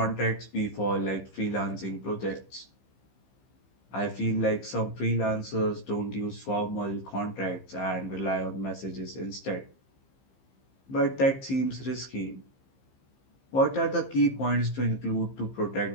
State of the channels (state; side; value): late; right; 15 ms